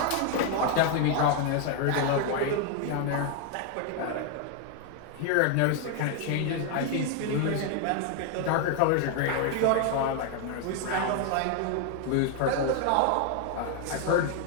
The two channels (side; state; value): both; different; correlation 0.00